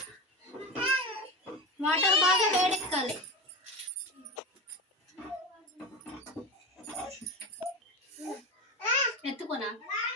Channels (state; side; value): normal; both; correlation 0.23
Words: వాటర్ బాగా వేడెక్కాలి. ఎత్తుకోనా